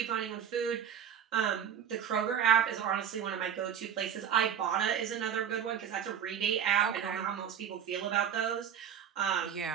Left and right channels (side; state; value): left; quieter; 8.7 dB